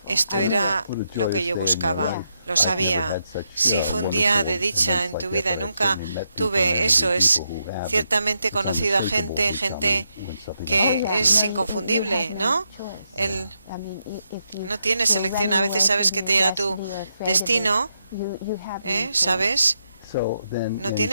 esto era lo que yo buscaba. Lo sabía. Sí, fue un día de dicha en tu vida. Nunca tuve eso. Es ciertamente conocido a gente que es inconfundible, ¿no? No tienes elección. A veces sabes que te llega tu destino, ¿sabes? No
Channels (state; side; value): inverted; both; correlation -0.82